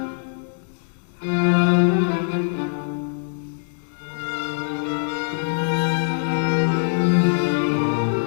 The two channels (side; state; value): right; silent; digital silence